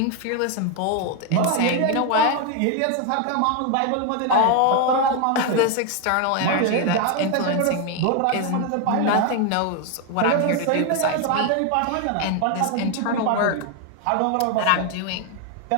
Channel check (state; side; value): different; both; correlation 0.01